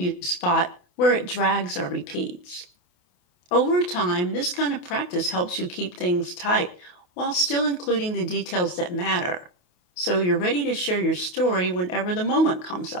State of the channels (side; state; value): right; late; 28 ms